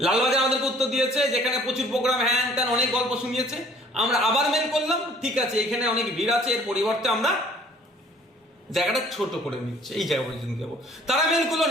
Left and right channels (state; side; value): normal; both; correlation 0.55